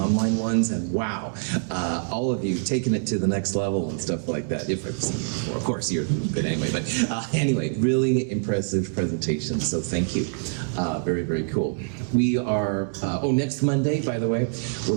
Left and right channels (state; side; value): silent; left; digital silence